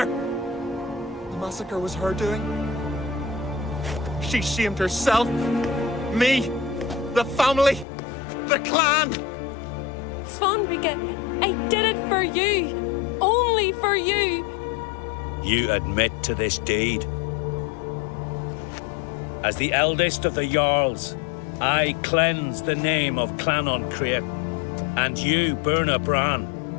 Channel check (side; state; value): right; drops out; at 7.9 s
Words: The massacre was her doing. She shamed herself, me, the family, the clan. Svanrika, I did it for you. Only for you. You admit to this deed. As the eldest of the Jarls, I cleanse the name of Clan Uncrate, and you, Berna Bran,